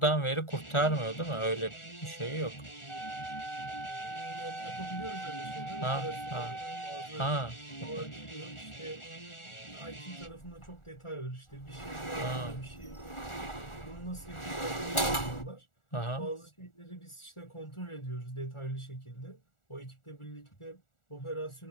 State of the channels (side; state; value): right; late; 1.4 ms